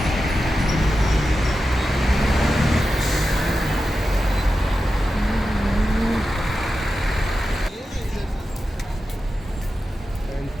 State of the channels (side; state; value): both; normal; correlation 0.91